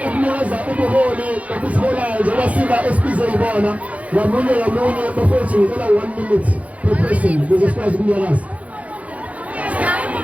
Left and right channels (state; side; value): late; left; 0.067 ms